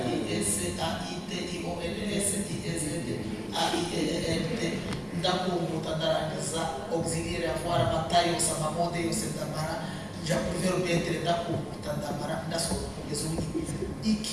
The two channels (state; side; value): identical; both; correlation 1.00